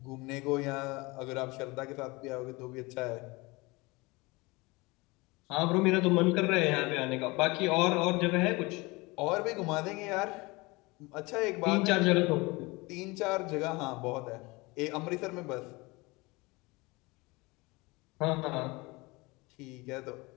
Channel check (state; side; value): quieter; right; 24.2 dB